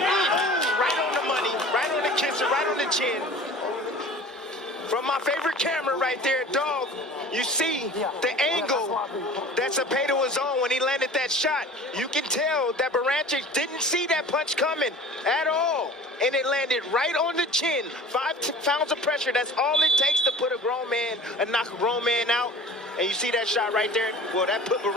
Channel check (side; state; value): both; normal; correlation 0.42